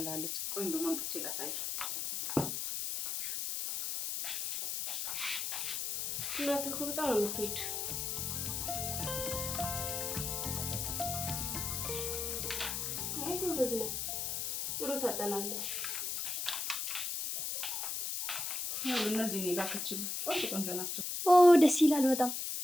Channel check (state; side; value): noise; left; hiss, 2 dB below the sound